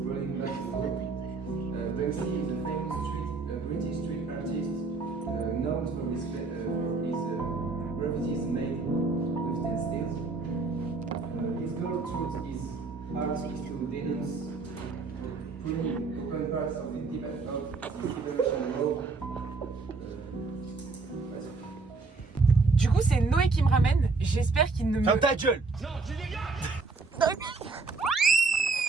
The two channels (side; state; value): left; quieter; 4.1 dB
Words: British street artist known for his graffitis made with textiles. His goal through his art is to denounce pruning open parts of the debate of the Civilization Law. Du coup, c'est Noé qui me ramène. J'espère qu'il ne me. Ferme ta gueule!